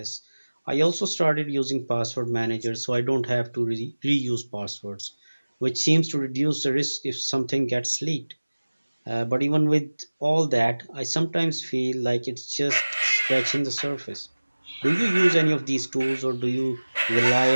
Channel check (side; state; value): both; inverted; correlation -1.00